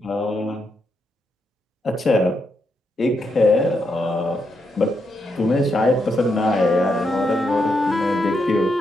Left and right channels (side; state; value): both; normal; correlation 0.81